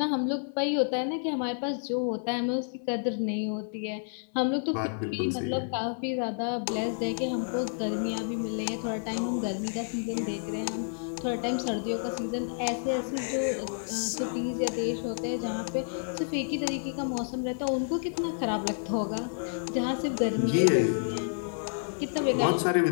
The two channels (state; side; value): silent; right; 58 dB below the other